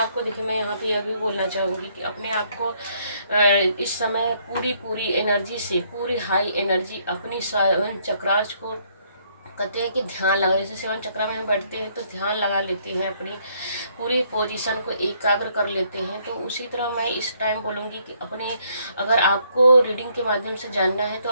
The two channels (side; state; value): both; inverted; correlation -0.68